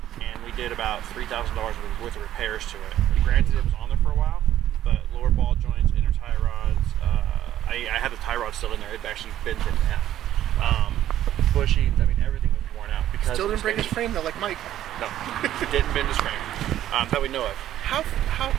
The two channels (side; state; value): left; quieter; 12.2 dB